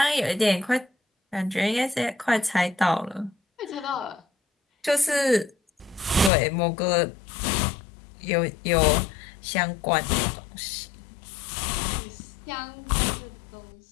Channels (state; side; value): drops out; right; at 6.3 s